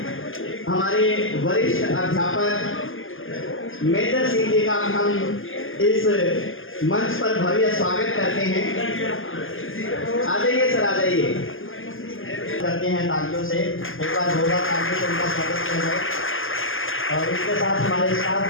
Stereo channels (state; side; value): late; right; 0.59 ms